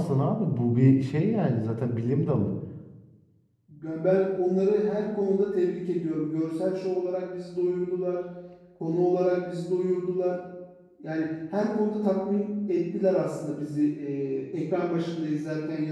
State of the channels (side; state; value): both; identical; correlation 1.00